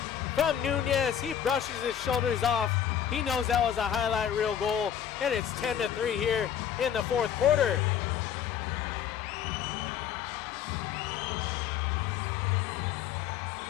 from Nunez. He brushes his shoulders off. He knows that was a highlight reel goal, and it's 10-3 here in the fourth quarter.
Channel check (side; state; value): right; quieter; 9.2 dB